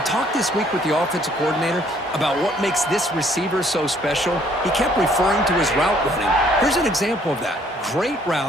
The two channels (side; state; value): both; normal; correlation 0.63